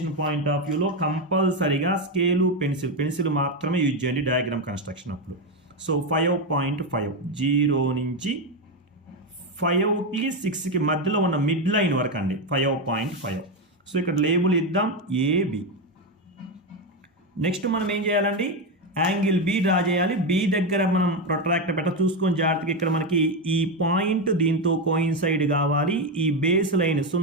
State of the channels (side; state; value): both; normal; correlation 0.10